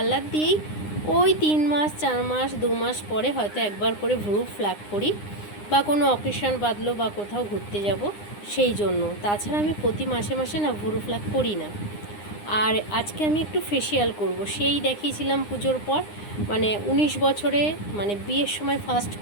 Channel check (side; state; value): right; late; 9.8 ms